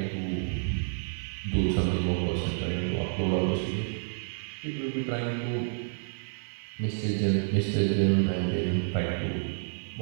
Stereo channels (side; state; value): left; silent; 58 dB below the other